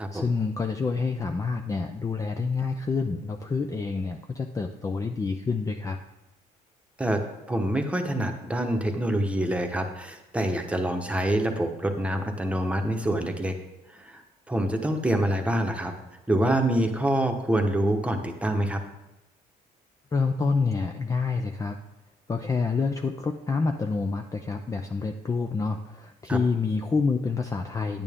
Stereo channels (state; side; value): normal; both; correlation 0.83